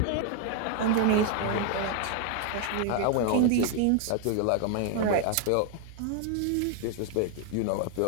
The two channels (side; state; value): both; different; correlation 0.01